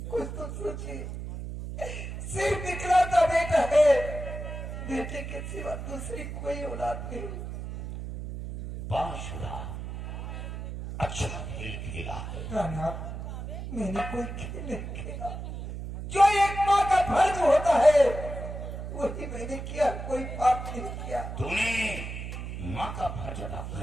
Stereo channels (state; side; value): noise; right; hum, 7 dB below the sound